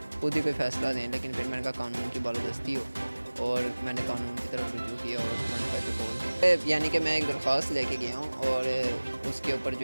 خود ہی کوئی فیصلہ دیں، لیکن پھر میں نے کہا قانون کی بالادستی ہو، اور میں نے قانون کی طرف رجوع کیا اور 15 پہ کال دی۔ یعنی کہ میں ایک درخواست لے کے گیا ہوں، اور اس کے اوپر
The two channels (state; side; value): inverted; both; correlation -1.00